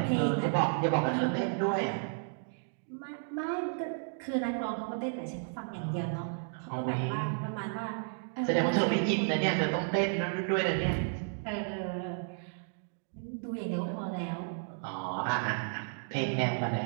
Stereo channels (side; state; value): left; silent; digital silence